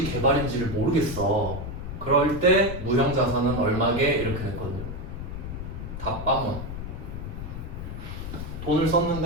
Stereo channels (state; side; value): noise; left; rumble, 7 dB below the sound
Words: 개발인지를 모르겠어. 그럴 때 무형 자산은 얼마게 이렇게 냈거든요. 다 빵원. 돈을